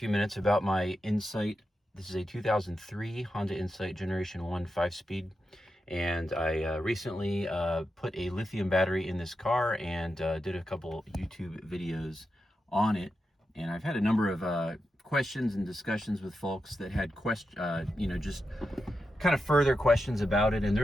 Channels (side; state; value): both; normal; correlation 0.88